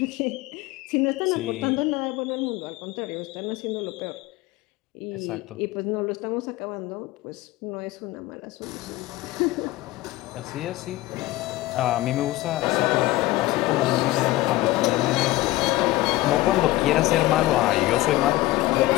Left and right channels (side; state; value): right; quieter; 18.0 dB